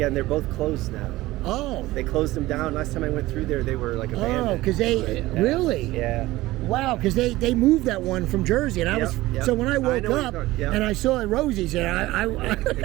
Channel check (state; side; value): quieter; left; 17.9 dB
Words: and they're both closed now. Oh. They closed them down. Last time I went through there, they were like abandoned. Oh, because they really? Yeah. Wow, because they moved that one from Jersey, and I was so when I woke up and I saw Rosie's there,